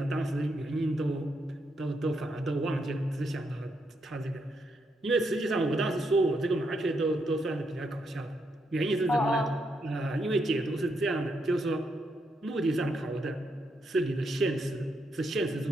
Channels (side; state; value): both; normal; correlation 0.79